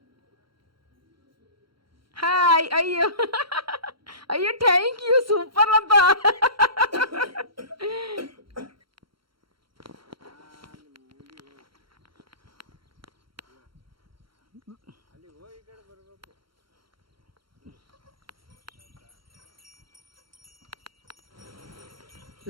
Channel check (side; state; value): left; late; 0.73 ms